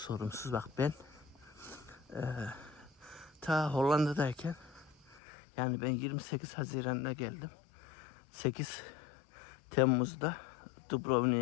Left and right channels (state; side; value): drops out; right; at 5.2 s